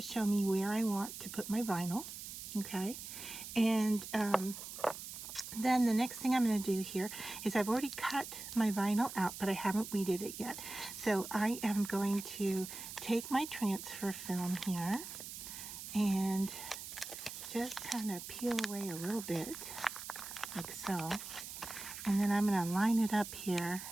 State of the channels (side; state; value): right; noise; hiss, 10 dB below the sound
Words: show me where I want to put my vinyl. Okay, and then the next thing I'm going to do here is I've already cut my vinyl out, but I haven't weeded it yet. So I am going to take my transfer film here and just kind of peel away a little bit, like so. And then I'm going to line it up here